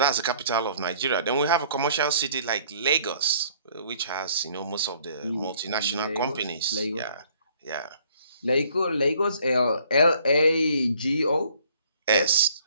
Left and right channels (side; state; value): both; inverted; correlation -0.59